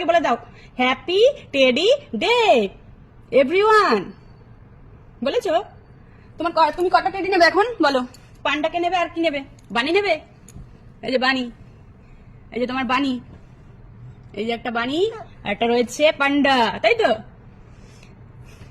বলে দাও হ্যাপি টেডি ডে এভরিওয়ান। বলেছো? তুমি কটা টেডি নেবে এখন বলো? পান্ডাকে নেবে আর কি নেবে? বানি নেবে? এই যে বানি, এই যে তোমার বানি, এই যে একটা বানি আর একটা রয়েছে পান্ডা, তাই তো?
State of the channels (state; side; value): identical; both; correlation 1.00